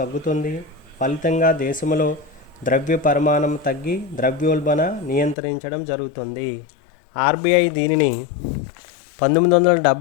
ఫలితంగా దేశంలో ద్రవ్య పరిమాణం తగ్గి ద్రవ్యోల్బణ నియంత్రించడం జరుగుతుంది. ఆర్బీఐ దీనిని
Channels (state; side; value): drops out; right; at 5.4 s